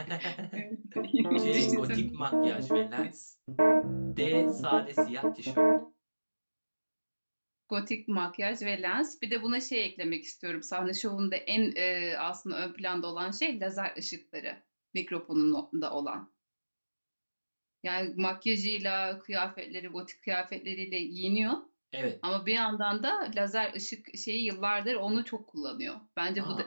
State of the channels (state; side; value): inverted; both; correlation -1.00